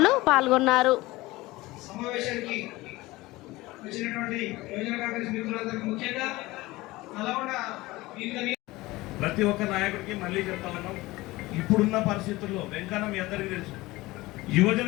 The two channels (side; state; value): right; quieter; 19.9 dB